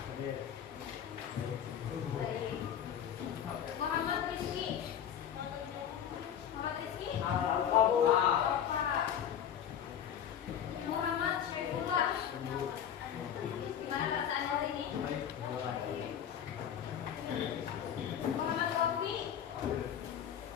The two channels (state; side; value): quieter; right; 9.2 dB